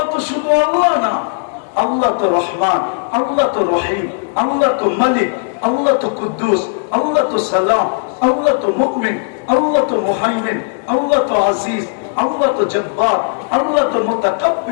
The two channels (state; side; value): silent; right; digital silence